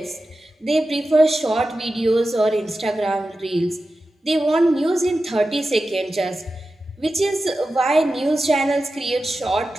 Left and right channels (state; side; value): normal; both; correlation 0.93